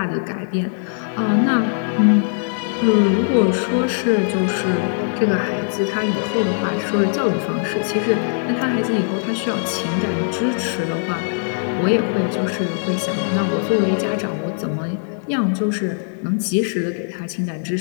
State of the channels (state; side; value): silent; right; digital silence